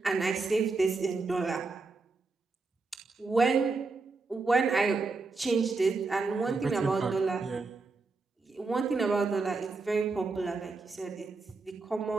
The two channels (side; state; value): left; quieter; 3.9 dB